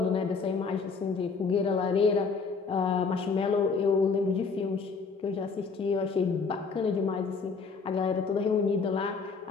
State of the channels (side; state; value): right; quieter; 4.9 dB